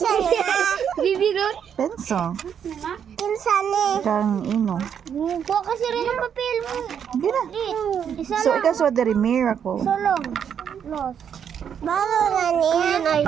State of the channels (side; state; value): left; quieter; 8.2 dB